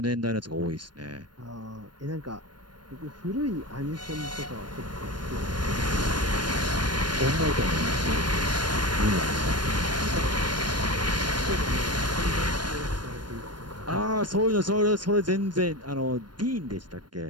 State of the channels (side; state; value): left; late; 0.71 ms